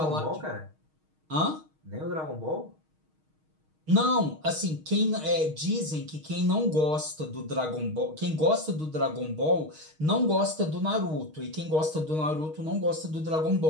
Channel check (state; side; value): late; left; 6.4 ms